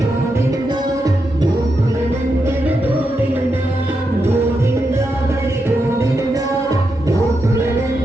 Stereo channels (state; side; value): normal; both; correlation 0.85